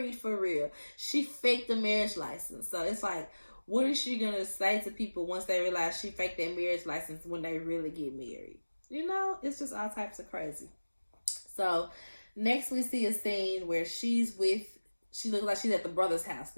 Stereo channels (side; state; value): both; inverted; correlation -1.00